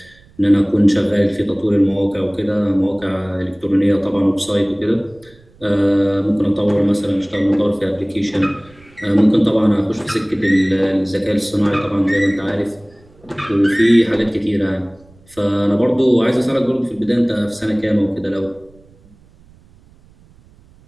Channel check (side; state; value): right; noise; rumble, 28 dB below the sound